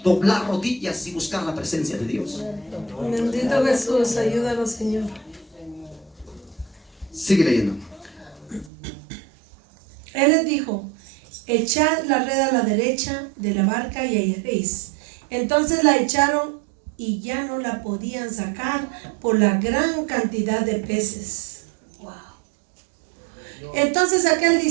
doblar rodillas y buscar la presencia de Dios. Bendito Jesús, ayúdanos, Señor. Sigue leyendo. Él les dijo: echad la red a la derecha de la barca y hallaréis. Entonces la echaron y ya no la podían sacar por la gran cantidad de peces. Wow. Entonces aquel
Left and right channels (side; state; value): left; drops out; at 8.7 s